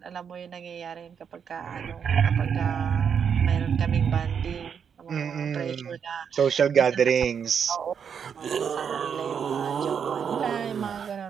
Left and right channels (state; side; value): quieter; left; 7.3 dB